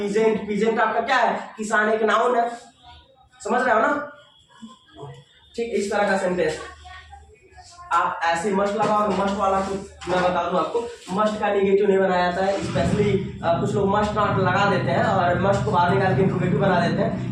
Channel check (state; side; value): identical; both; correlation 1.00